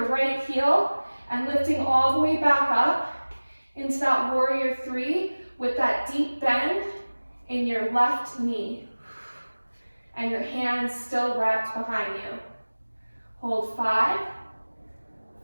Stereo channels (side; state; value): both; inverted; correlation -1.00